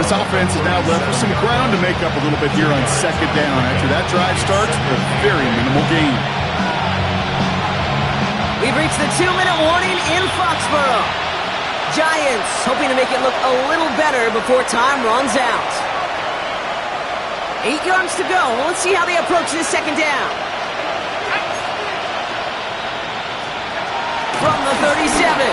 This offense is now left with some ground to make up a little bit here on second down. After that drive starts with a very minimal gain. We've reached the 2-minute warning in Foxborough. Giants hoping to make it look a little better before time runs out. 8 yards to go. Well, let's see how they approach this second down. From the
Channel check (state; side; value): identical; both; correlation 1.00